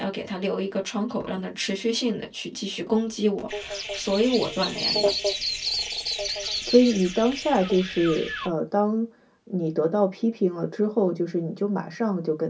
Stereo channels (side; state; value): both; identical; correlation 1.00